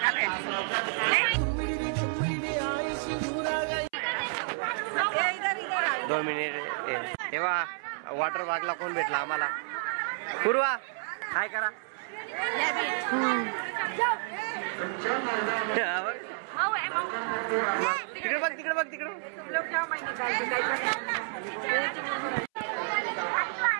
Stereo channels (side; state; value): left; silent; 58 dB below the other